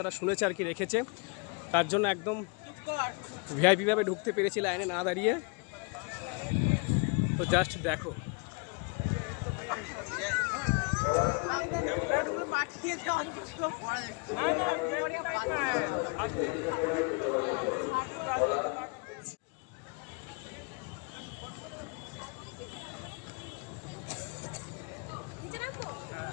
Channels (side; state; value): right; quieter; 33.0 dB